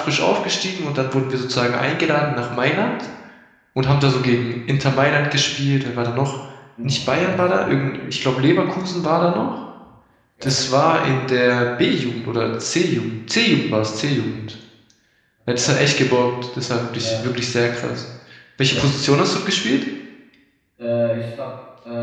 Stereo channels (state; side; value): identical; both; correlation 1.00